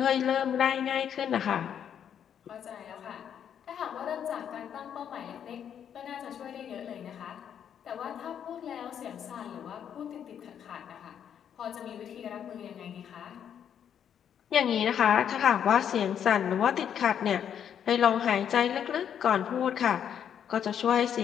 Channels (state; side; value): quieter; right; 8.8 dB